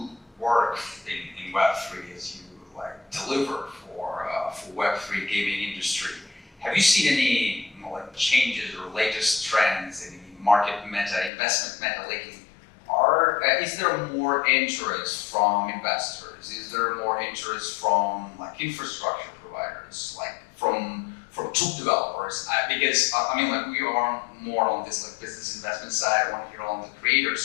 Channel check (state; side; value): drops out; right; at 11.3 s